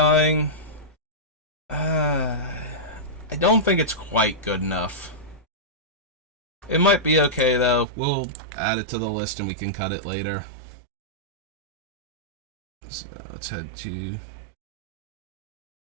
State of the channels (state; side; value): drops out; left; at 7.9 s